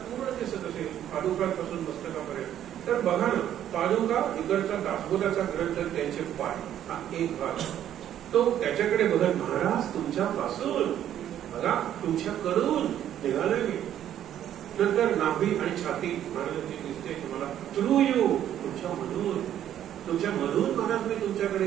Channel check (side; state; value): left; quieter; 10.9 dB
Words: पूर्ण दिसत असेल पादुकांपासून मस्तकापर्यंत, तर बघा ना, पादुका इकडचा दासबोधाचा ग्रंथ, त्यांचे पाय, हा एक भाग. तो त्याच्याकडे बघत महाराज तुमच्यापासून, बघा तुमच्याकडून निघालोय मी. नंतर नाभी आणि छाती महाराजांची दिसते तुम्हाला, थ्रू यू, तुमच्यामधून, तुमच्यामधून महाराज मी तुमच्याकडे